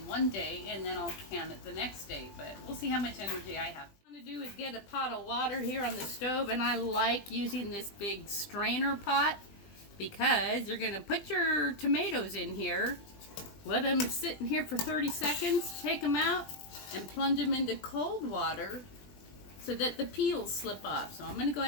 1 day and then I'll can it the next day, but we'll see how much energy I have. What I'm going to do is get a pot of water here on the stove, and I like using this big strainer pot because you're going to put your tomatoes in here, let them sit in here for 30 seconds, take them out and plunge them into cold water so that the peels slip off. So I'm going to go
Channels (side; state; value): right; late; 20 ms